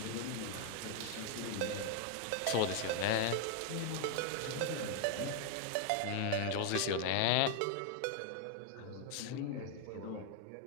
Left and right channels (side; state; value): both; different; correlation 0.00